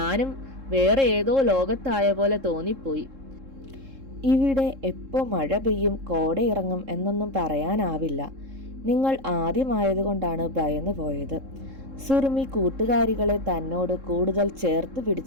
വേറെ ഏതോ ലോകത്തായ പോലെ തോന്നിപ്പോയി. ഇവിടെ എപ്പോ മഴ പെയ്യും കോടയിറങ്ങും എന്നൊന്നും പറയാനാവില്ല. നിങ്ങൾ ആദ്യമായതുകൊണ്ടാണ് ഭയന്നു പോയത്. സുറുമി കൂട്ടുകാരികളെ തന്നോട് കൂടുതൽ ചേർത്ത്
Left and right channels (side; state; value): left; late; 3.7 ms